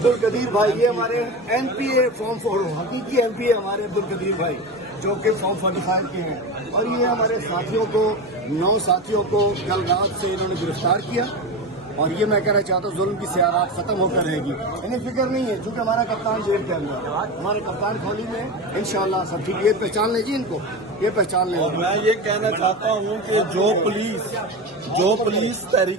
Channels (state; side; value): normal; both; correlation 0.23